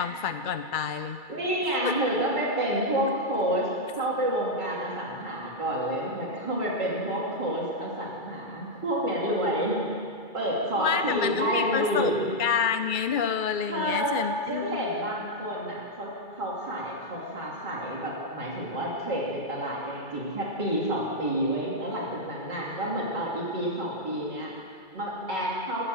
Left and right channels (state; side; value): late; right; 2.3 ms